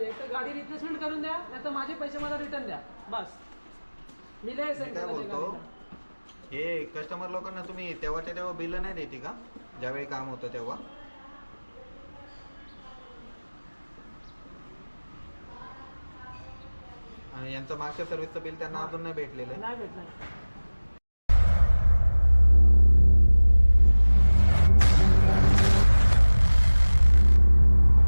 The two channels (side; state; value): both; inverted; correlation -1.00